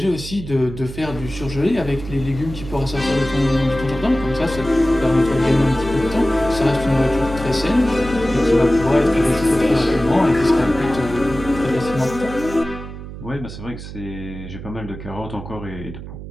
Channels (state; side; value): noise; right; hum, 11 dB below the sound